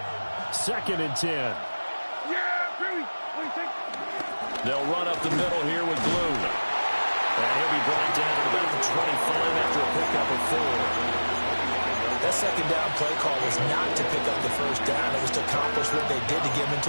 2nd and 10. Yeah, Billy. What do you think? They'll run up the middle here with Blue. And he'll be brought down to about the 25 after a pickup of 4. That 2nd down play call was not to pick up the 1st down. It was to accomplish what they did to get them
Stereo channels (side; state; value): both; inverted; correlation -1.00